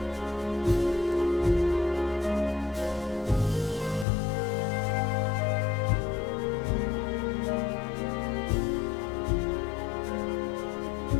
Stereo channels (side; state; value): right; drops out; at 4.0 s